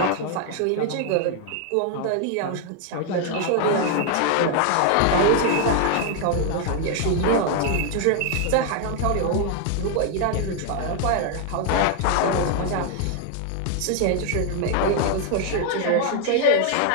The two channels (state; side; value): different; both; correlation 0.00